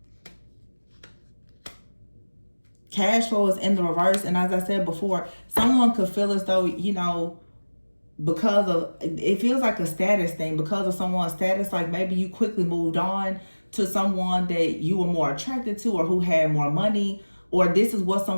Cash flow is in the reverse, and as I said before, someone could feel as though, you know, because of, it feels like a status thing, because of someone's status, like maybe you quickly moved on to someone that you were more attracted to, or who had more money, or this is what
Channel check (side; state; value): both; inverted; correlation -1.00